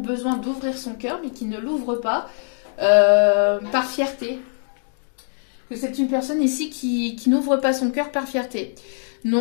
d'ouvrir son cœur, mais qui ne l'ouvre pas par fierté. Que c'est une personne ici qui n'ouvre pas son cœur par fierté.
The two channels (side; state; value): right; silent; digital silence